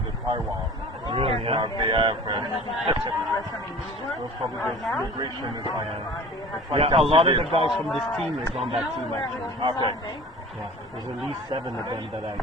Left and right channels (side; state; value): both; normal; correlation 0.42